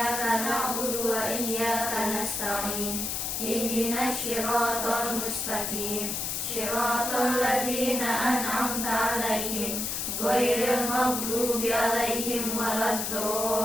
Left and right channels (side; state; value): left; noise; hiss, 2 dB below the sound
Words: na'budu wa iyyaka nasta'in. Ihdinas siratal mustaqim. Siratal ladzina an'amta 'alaihim ghairil maghdubi 'alaihim